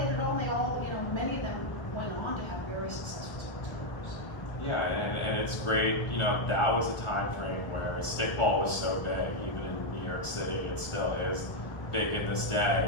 it all, and they all, you know, many of them went on to have very successful sports careers. Yeah, and it's great, you know, that was a time frame where stickball was so big, even in New York City, it still is big in this day.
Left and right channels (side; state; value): right; late; 1.3 ms